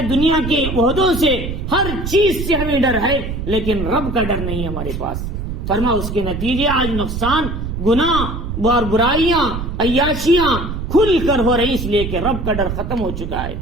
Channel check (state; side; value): noise; right; rumble, 5 dB below the sound